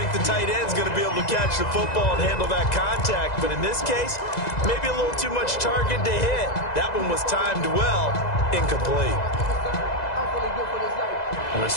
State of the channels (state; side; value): late; right; 2.0 ms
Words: the tight end's going to be able to catch the football and handle that contact, but in this case, maybe a little too much target to hit. That one was timed well, incomplete. The